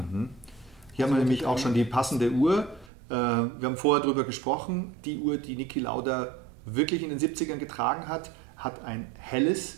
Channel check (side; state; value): left; drops out; at 2.9 s